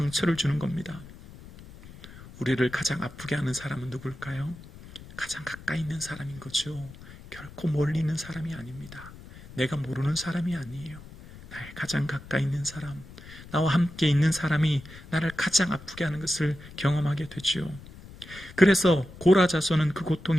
주는 겁니다. 우리를 가장 아프게 하는 사람은 누굴까요? 가장 가까이 있는 사람인 거죠. 결코 멀리 있는 사람이 아닙니다. 내가 모르는 사람이 아니에요. 나의 가장 가까이 있는 사람, 나와 함께 있는 사람이 나를 가장 아프게 하는 것을 경험하게 되죠. 그래서 고라 자손은 그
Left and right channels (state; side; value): noise; left; rumble, 17 dB below the sound